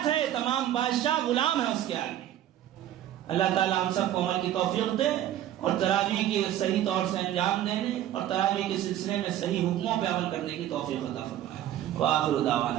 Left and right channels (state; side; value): quieter; left; 12.2 dB